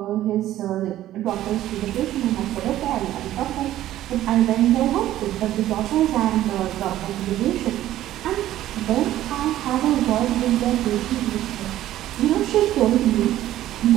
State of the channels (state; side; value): quieter; left; 13.6 dB